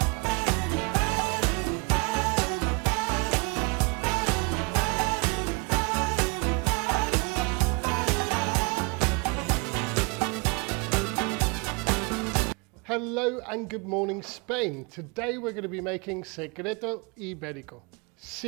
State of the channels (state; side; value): quieter; left; 30.0 dB